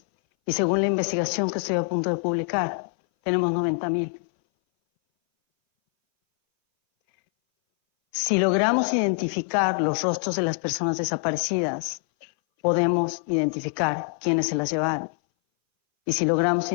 Y según la investigación que estoy a punto de publicar, tenemos 90,000. Si logramos identificar los rostros de las personas desaparecidas, podemos identificar quiénes se las llevaron. Y si logramos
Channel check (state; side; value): silent; right; 59 dB below the other